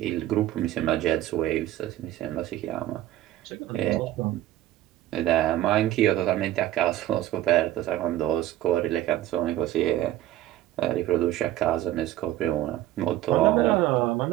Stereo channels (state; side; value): quieter; left; 14.1 dB